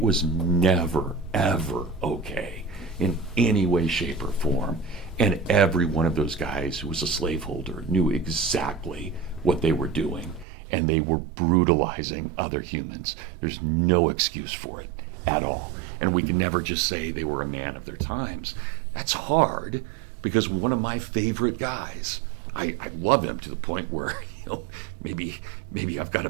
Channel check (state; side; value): drops out; left; at 10.5 s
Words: was never, ever okay in any way, shape, or form. And every one of those guys who was a slaveholder knew exactly what they were doing, and they were brutalizing other humans. There's no excuse for it at all. And we can never just say they were a man of their times. That's hard, because one of my favorite guys, I love him to the point where, maybe I've got a